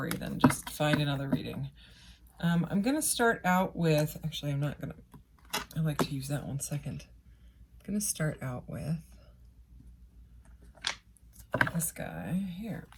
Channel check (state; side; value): identical; both; correlation 1.00